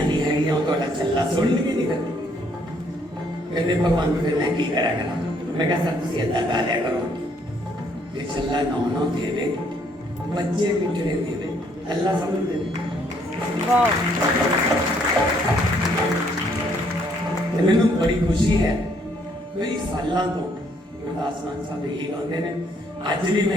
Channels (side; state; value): both; normal; correlation 0.67